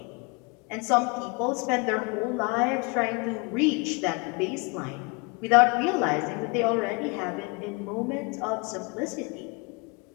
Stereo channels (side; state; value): right; quieter; 29.8 dB